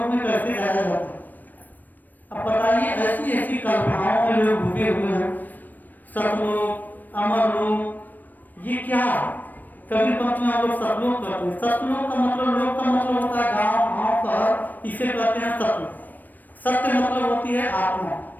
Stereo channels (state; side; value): late; right; 0.088 ms